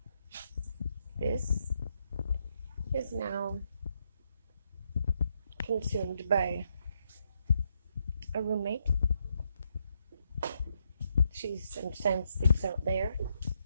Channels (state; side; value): inverted; both; correlation -0.78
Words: This is now consumed by a roommate. She sometimes sleeps out there.